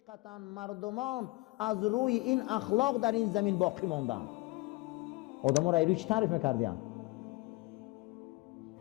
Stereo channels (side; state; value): right; quieter; 22.0 dB